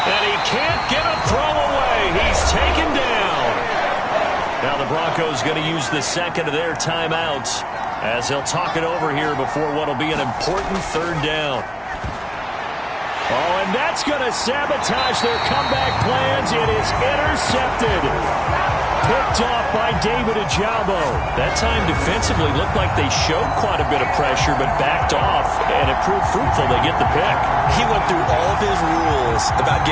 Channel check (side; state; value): both; identical; correlation 1.00